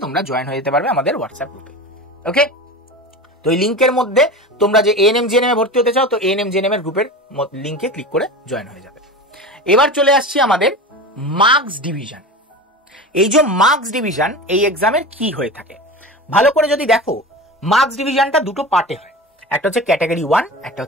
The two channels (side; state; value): both; normal; correlation 0.30